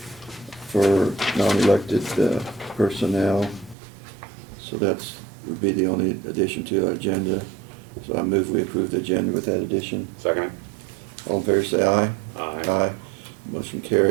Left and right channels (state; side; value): drops out; left; at 3.8 s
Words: for non-elected personnel. So that's would be the only addition to our agenda. So I move we approve the agenda with that addition. Second. All in favor say aye. Aye. Aye. Motion